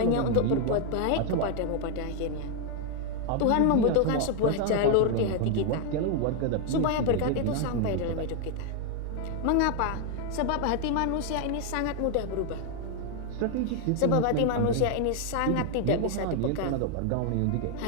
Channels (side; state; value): both; different; correlation 0.00